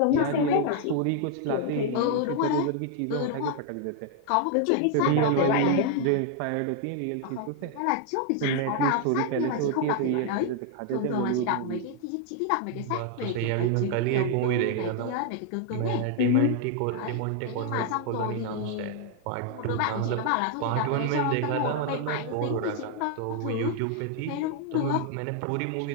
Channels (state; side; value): different; both; correlation 0.00